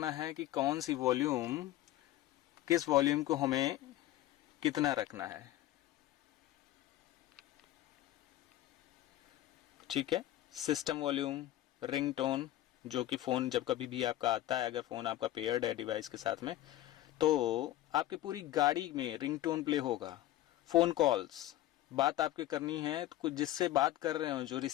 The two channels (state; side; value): quieter; right; 14.6 dB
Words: है कि कौन सी वॉल्यूम, किस वॉल्यूम को हमें कितना रखना है। ठीक है, सिस्टम वॉल्यूम, रिंगटोन, जो कि फ़ोन जब कभी भी आपका आता है, अगर फ़ोन आपका पेयर्ड है डिवाइस के साथ में, तो आपकी पूरी गाड़ी में रिंगटोन प्ले होगा। फ़ोन कॉल्स, बात आपके करनी है तो कुछ जिससे बात कर रहे हो, जो